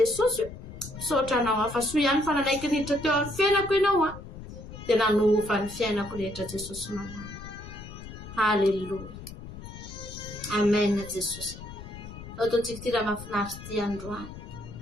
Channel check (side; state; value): left; noise; rumble, 13 dB below the sound